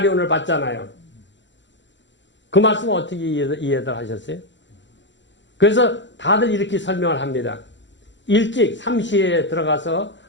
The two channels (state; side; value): late; right; 0.53 ms